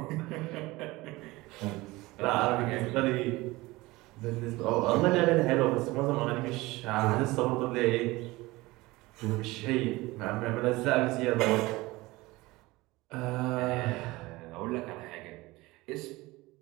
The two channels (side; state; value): left; quieter; 20.7 dB